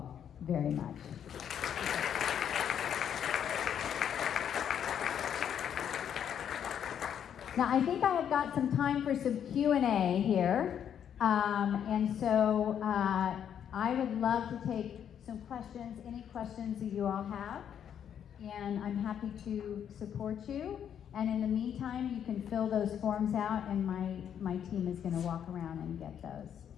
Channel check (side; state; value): right; quieter; 8.9 dB